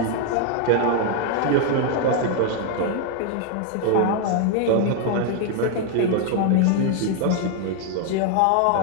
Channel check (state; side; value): different; both; correlation 0.00